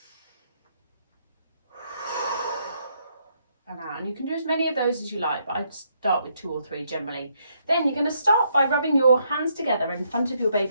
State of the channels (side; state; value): both; inverted; correlation -0.74